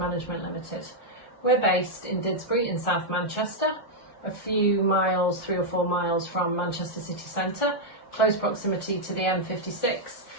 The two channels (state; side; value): late; right; 1.4 ms